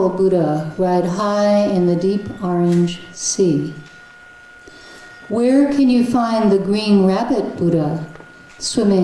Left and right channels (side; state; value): both; identical; correlation 1.00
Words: Buddha ride high in the deep orange sea. Where can you find the green rabbit Buddha